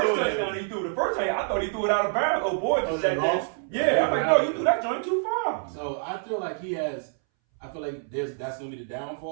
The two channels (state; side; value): silent; left; 60 dB below the other